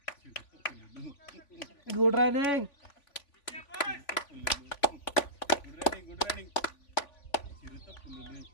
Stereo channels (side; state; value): right; late; 3.5 ms